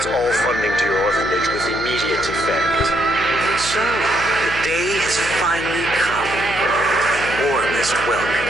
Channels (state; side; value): noise; left; hum, 12 dB below the sound